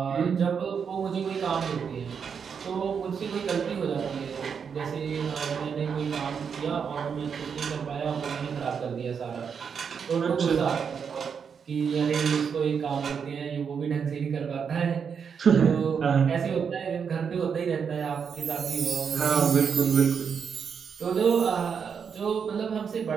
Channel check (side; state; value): left; quieter; 6.7 dB